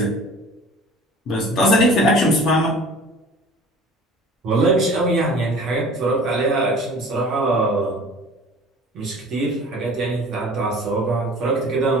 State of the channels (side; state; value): both; normal; correlation 0.45